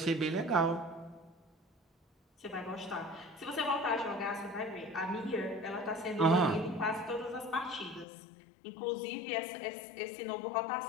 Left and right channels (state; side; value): drops out; right; at 8.1 s